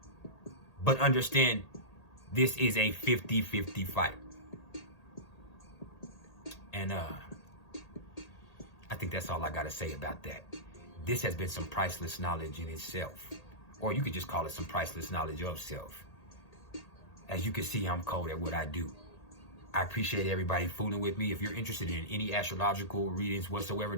But understand, this is a 50-50 fight. And I think that's all I got to say about that. This has been some priceless knowledge in itself. Or you could just call it some priceless knowledge of self. As you can see, I'm cold at what I do. I appreciate everybody fooling with me. If you're interested in any astrological readings whatsoever,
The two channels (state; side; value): late; right; 1.8 ms